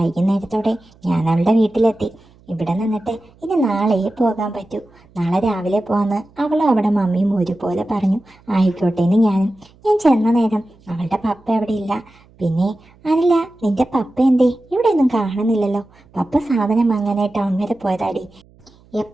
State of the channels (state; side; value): noise; right; hum, 29 dB below the sound